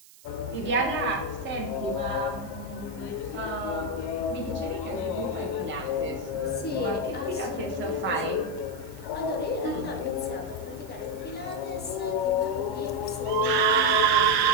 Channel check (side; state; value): right; noise; hiss, 23 dB below the sound